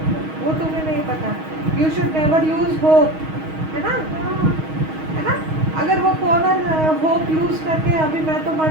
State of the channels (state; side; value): late; left; 6.3 ms